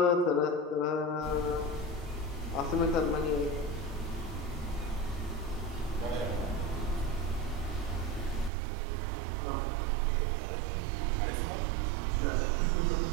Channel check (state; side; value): drops out; left; at 8.5 s